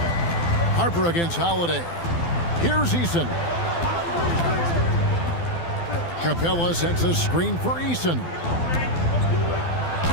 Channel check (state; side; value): late; right; 12 ms